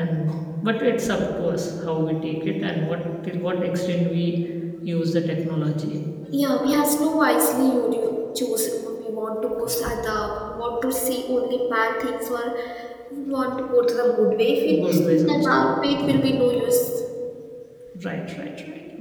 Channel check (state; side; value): identical; both; correlation 1.00